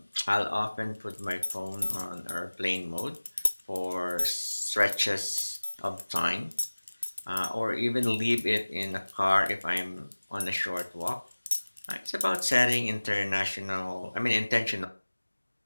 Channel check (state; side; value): inverted; both; correlation -1.00